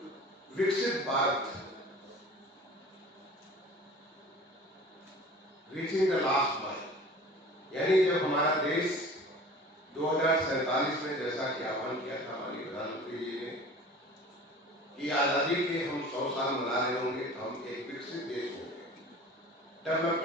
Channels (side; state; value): both; normal; correlation 0.42